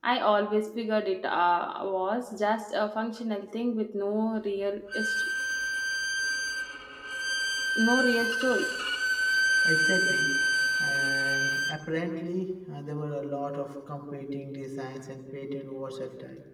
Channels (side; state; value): both; identical; correlation 1.00